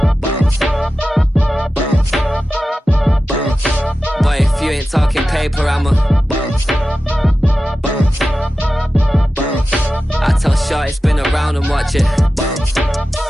Boy, if you ain't talking paper, I'm a I tell Shorty spin around and watch it.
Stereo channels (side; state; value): both; normal; correlation 0.94